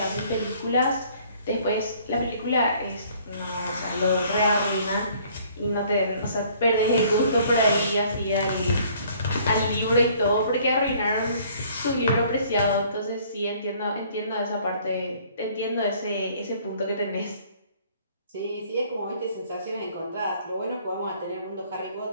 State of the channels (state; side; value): inverted; both; correlation -0.58